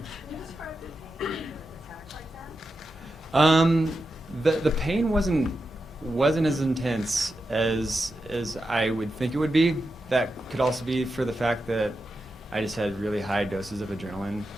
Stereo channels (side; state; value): both; normal; correlation 0.89